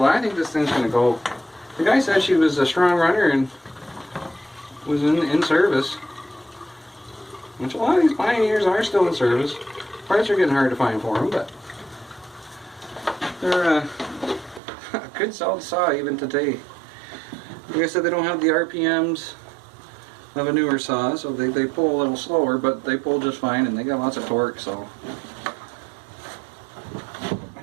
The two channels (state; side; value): drops out; left; at 14.6 s